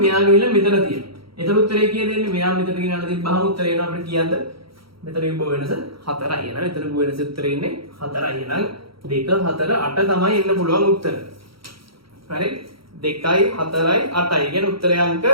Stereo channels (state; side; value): late; left; 0.75 ms